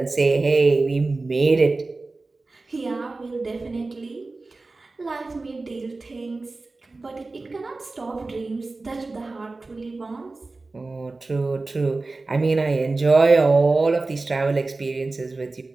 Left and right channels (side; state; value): left; quieter; 3.5 dB